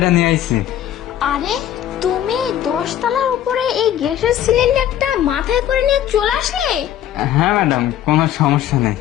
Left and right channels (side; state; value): right; quieter; 11.4 dB